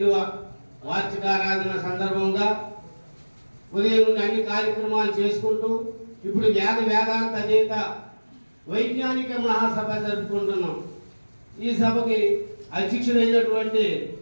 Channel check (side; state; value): both; inverted; correlation -1.00